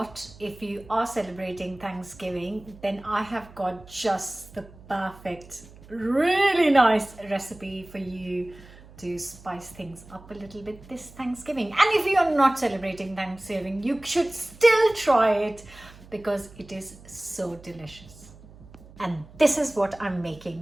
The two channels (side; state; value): right; noise; hum, 21 dB below the sound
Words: If you are celebrating Thanksgiving, then I have got just the perfect, really nice recipe for you to spice things up a little bit this Thanksgiving. And if you are not celebrating Thanksgiving, you should still try it because it is so delicious. And this is what I'm